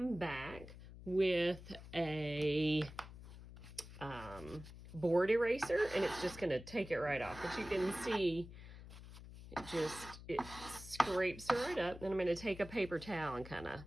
back with a board eraser, and it's just going to take it right off. But you can see it scrapes right up. Then I'm going to take a paper towel and kind of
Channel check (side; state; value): left; noise; hum, 15 dB below the sound